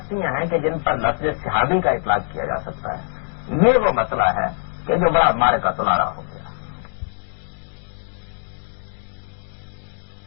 ہیں کہ جن پر لفظ صحابی کا اطلاق کیا جا سکتا ہے؟ یہ وہ مسئلہ ہے کہ جو بڑا مارے کا تلارا ہو گیا.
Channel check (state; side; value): silent; right; digital silence